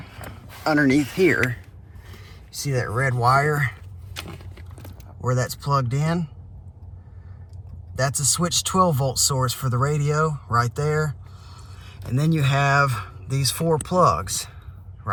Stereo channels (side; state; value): both; identical; correlation 1.00